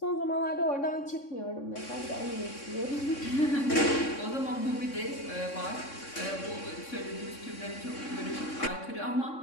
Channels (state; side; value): late; right; 3.6 ms